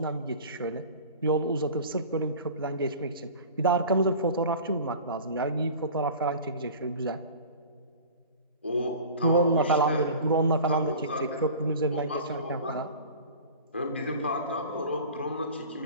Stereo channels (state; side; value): inverted; both; correlation -0.39